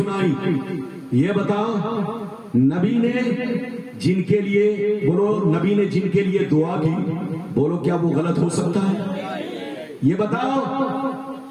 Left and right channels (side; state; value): both; identical; correlation 1.00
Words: یہ بتاؤ نبی نے جن کے لیے، بولو نبی نے جن کے لیے دعا کی، بولو کیا وہ غلط ہو سکتا ہے؟ یہ بتاؤ